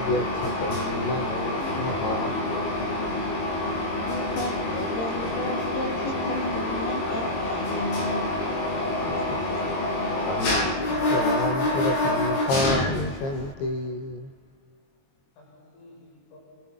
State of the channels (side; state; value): right; late; 22 ms